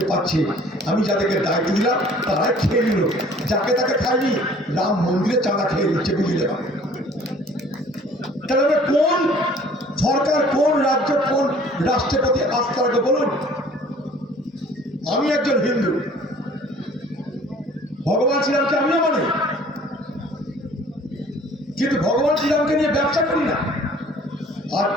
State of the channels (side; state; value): both; normal; correlation 0.52